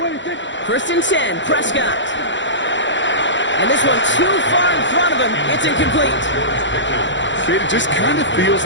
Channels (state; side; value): late; right; 0.54 ms